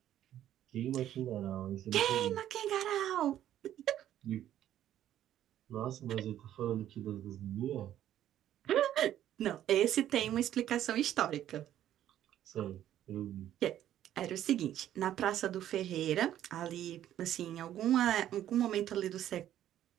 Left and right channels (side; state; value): left; quieter; 11.7 dB